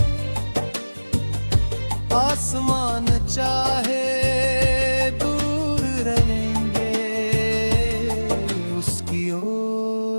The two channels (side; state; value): both; inverted; correlation -1.00